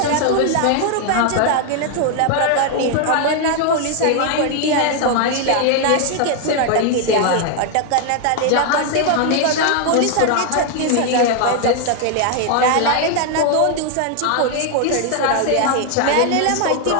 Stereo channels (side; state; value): both; different; correlation 0.00